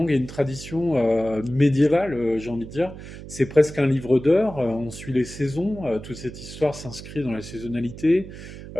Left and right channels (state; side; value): noise; right; hum, 13 dB below the sound